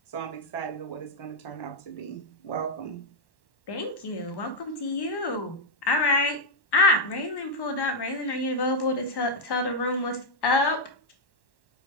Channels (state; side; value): late; right; 1.1 ms